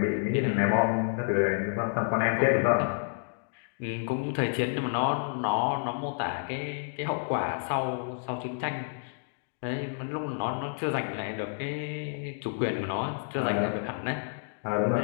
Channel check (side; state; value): right; silent; digital silence